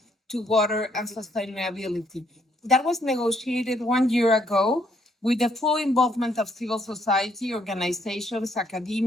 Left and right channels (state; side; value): normal; both; correlation 0.70